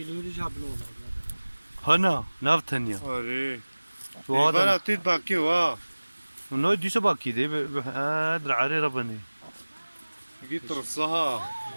هنا نافتنيا اري وهذا تيت باكي وا نو دي سباكي دي ادر عري ربني جيت رصها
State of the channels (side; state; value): both; inverted; correlation -1.00